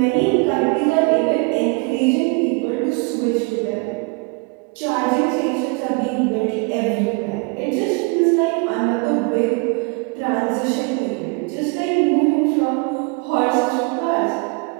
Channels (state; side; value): quieter; left; 30.3 dB